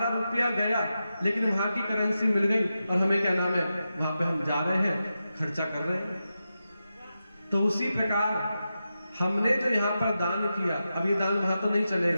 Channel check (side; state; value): both; inverted; correlation -0.90